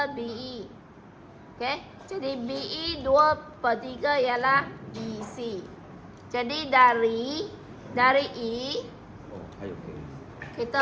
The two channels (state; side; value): identical; both; correlation 1.00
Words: BE. Okay? Jadi BE 2/3 ialah BC. Jadi dari E